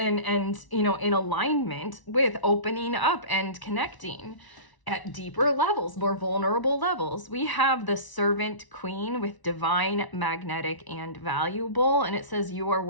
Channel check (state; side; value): late; right; 1.0 ms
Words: and you know, in alignment with opening up and connecting at deeper levels, more vulnerable levels. We have the Servant Queen with Divine, Magnetic, and Valuable, and it says you are